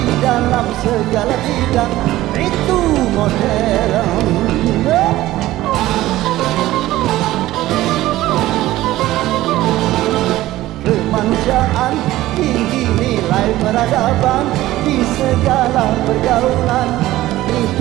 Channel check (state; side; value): quieter; left; 15.9 dB